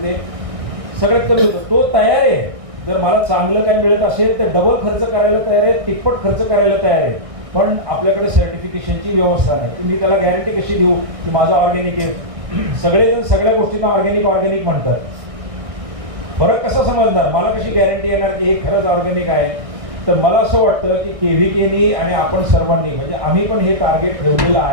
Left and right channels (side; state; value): left; late; 1.6 ms